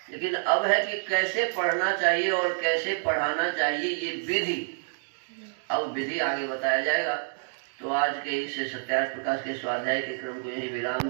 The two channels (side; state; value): left; silent; digital silence